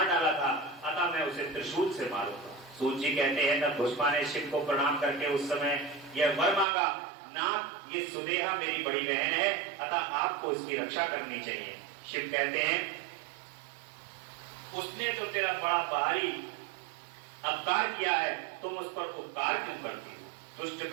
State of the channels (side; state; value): left; drops out; at 6.7 s